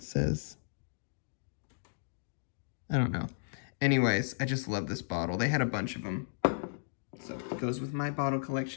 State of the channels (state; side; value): silent; right; digital silence